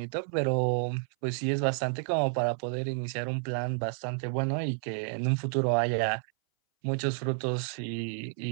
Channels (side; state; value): left; silent; 58 dB below the other